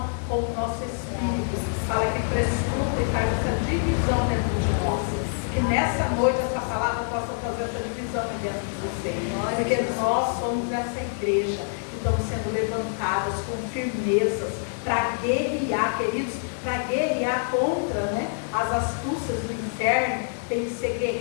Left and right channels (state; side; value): silent; right; digital silence